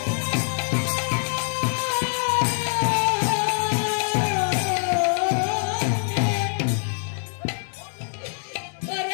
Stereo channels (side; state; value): right; silent; 62 dB below the other